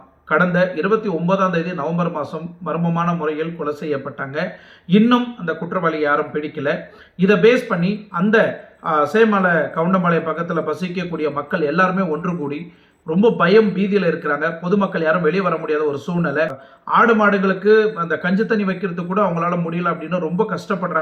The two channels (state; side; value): identical; both; correlation 1.00